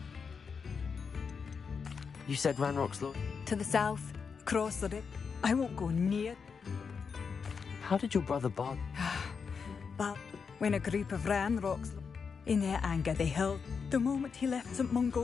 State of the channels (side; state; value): right; quieter; 5.8 dB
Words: You said Ranrock's law? To the south, across the river. I won't go near. How did your brother Bard... But when a group of Ranrocks, in their anger they held. The moment he left St.